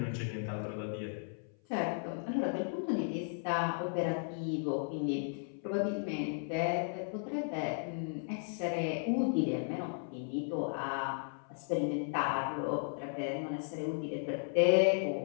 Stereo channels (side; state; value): right; silent; 54 dB below the other